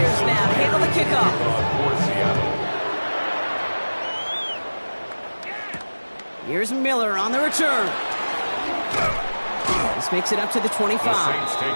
now to handle the kickoff. Here's Miller on the return. This makes it up to the 25. The Saints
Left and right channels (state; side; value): inverted; both; correlation -1.00